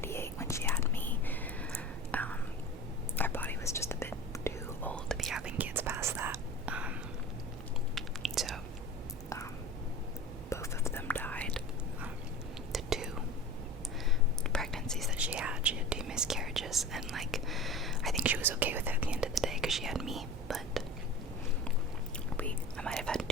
when she had me, our body was just a bit too old to be having kids past that. So both of them died. The 2 pregnancies that she had 2 miscarriages, and like I think she was okay with it at the end of the day because she had me, but I might have had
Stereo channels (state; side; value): normal; both; correlation 0.34